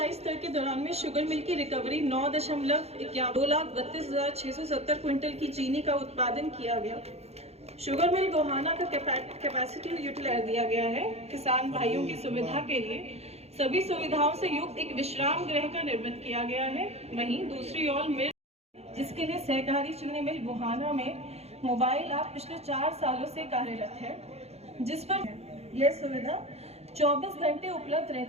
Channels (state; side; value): late; left; 0.31 ms